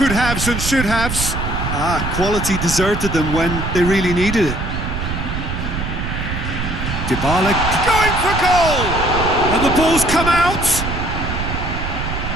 and should-haves. Quality deserted them when they really needed it. Dybala going for goal! And the ball's come out.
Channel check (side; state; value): right; noise; rumble, 4 dB below the sound